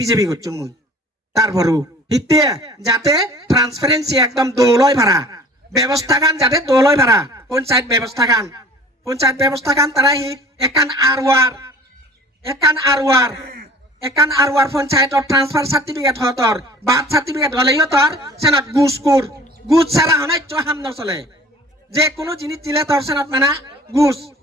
বিজেপি করছো মুই তারপরও হিতে যাতে ট্রান্সপারেন্সি একদম দৌলয় ভাড়া ব্যবস্থা গান যাতে দৌলয় ভাড়া পঞ্চায়েত ব্যবস্থা গান তারা হি একান আরওয়ার পঞ্চায়েতর ট্রান্সফার সার্টিফিকেট হতর বার্থ সার্টিফিকেট হলেই তোর সেনত গুজ ছাড়া হনাই হাম নচলে যে কোনো জিনিস দিলে তোর সেনত মানে গুজ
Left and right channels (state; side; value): normal; both; correlation 0.47